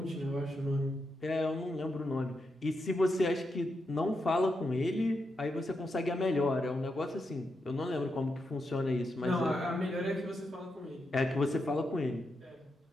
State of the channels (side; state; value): both; normal; correlation 0.85